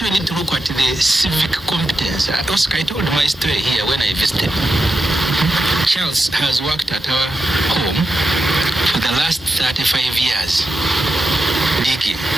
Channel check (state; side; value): normal; both; correlation 0.88